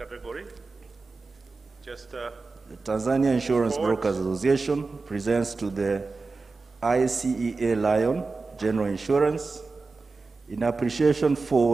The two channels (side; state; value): left; quieter; 4.0 dB